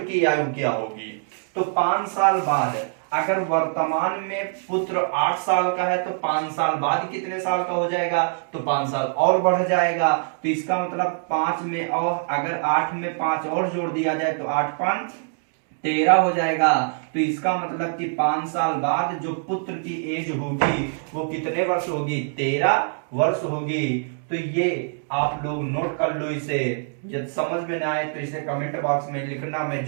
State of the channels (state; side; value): silent; left; digital silence